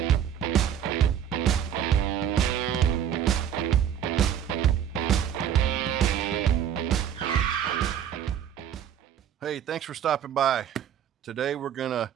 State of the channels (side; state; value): left; quieter; 9.3 dB